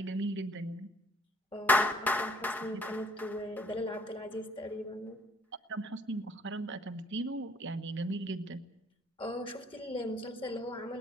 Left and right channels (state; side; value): normal; both; correlation 0.60